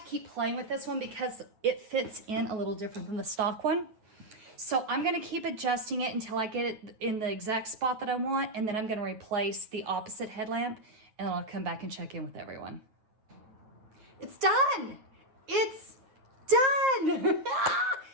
keep playing with this one because it fits in a little different than the stock one. So I'm gonna keep adjusting it until I get it in the exact spot that I want, and then I'm gonna replace the opposite headlamp, and then I'll come back and check in with everyone. It's done! It's done!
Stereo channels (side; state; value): left; late; 9.3 ms